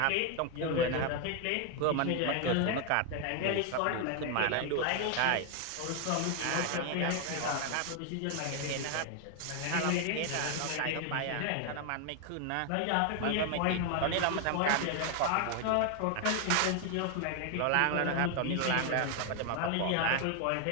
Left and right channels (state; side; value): different; both; correlation 0.00